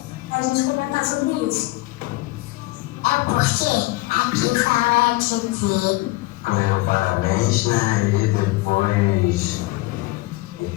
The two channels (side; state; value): right; quieter; 20.5 dB